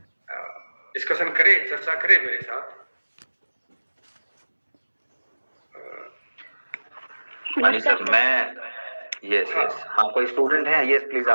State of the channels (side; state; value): both; inverted; correlation -1.00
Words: डिस्कशन करे, चर्चा करे मेरे साथ। सर मैं यस कोई स्टूडेंट है? यस प्लीज